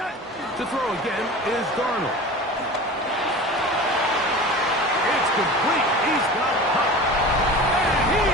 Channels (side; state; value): both; normal; correlation 0.35